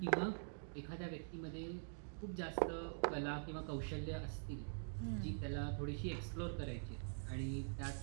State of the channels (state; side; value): silent; left; digital silence